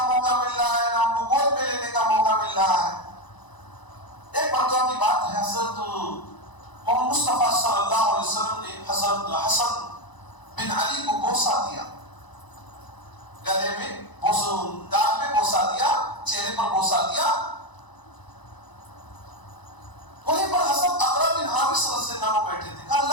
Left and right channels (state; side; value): late; right; 1.0 ms